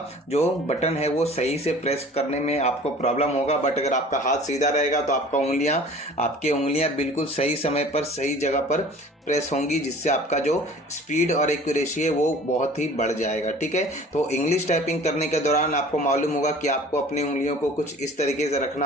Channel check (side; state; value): both; normal; correlation 0.46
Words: जो बटन है वो सही से प्रेस करने में आपको प्रॉब्लम होगा। बट अगर आपका हाथ सीधा रहेगा तो आपकी उंगलियां बिल्कुल सही समय पर सही जगह पर प्रेस होंगी, जिससे आपका जो स्पीड और एक्यूरेसी है वो बहुत ही बढ़ जाएगा। ठीक है, तो इंग्लिश टाइपिंग करने के दौरान आपको मालूम होगा कि आपको अपनी उंगलियों को कुछ इस तरीके से